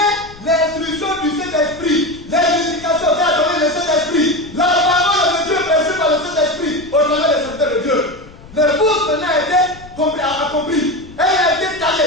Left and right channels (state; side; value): noise; left; rumble, 20 dB below the sound